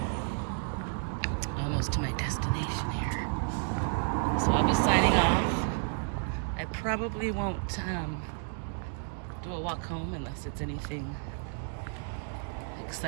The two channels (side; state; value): left; silent; 57 dB below the other